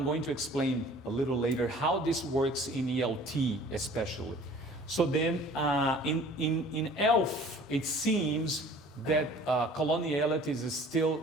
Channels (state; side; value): normal; both; correlation 0.49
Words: going to explain a little later how this works in ELT especially. So then in ELF, it seems that coloniality is still